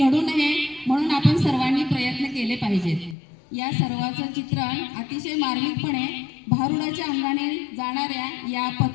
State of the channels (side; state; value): right; drops out; at 3.2 s